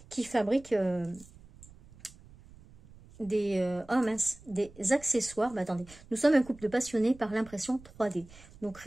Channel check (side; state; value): right; noise; rumble, 22 dB below the sound